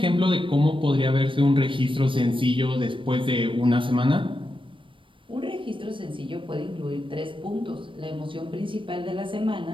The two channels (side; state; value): left; late; 0.25 ms